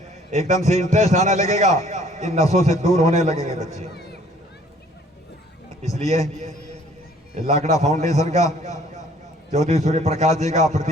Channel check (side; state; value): both; normal; correlation 0.57